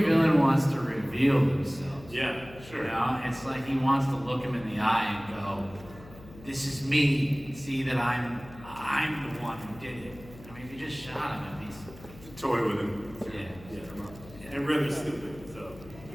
villain wants to reveal themselves. Yeah, sure. It's like he wants to look him in the eye and go, "This is me. See that I'm the one who did it." I mean, if you just shot him, he's Toy with him. Yeah. And really stupid, so.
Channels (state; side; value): noise; left; hum, 19 dB below the sound